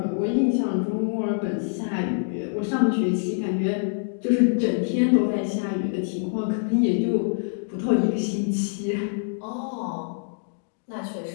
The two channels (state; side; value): silent; right; digital silence